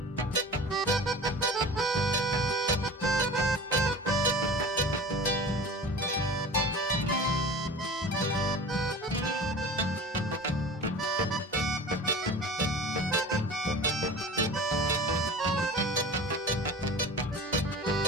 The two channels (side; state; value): both; normal; correlation 0.37